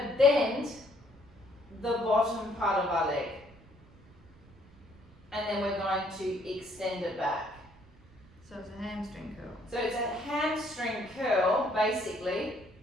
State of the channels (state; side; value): noise; right; rumble, 25 dB below the sound